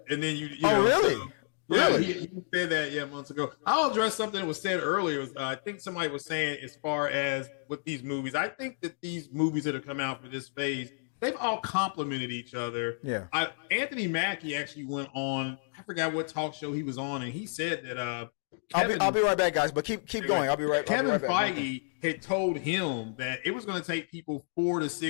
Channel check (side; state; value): right; silent; digital silence